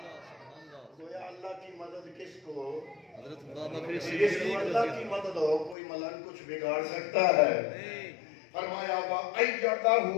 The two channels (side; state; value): right; drops out; at 5.8 s